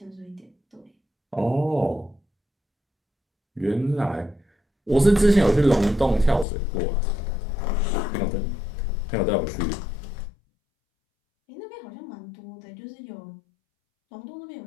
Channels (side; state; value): right; drops out; at 6.5 s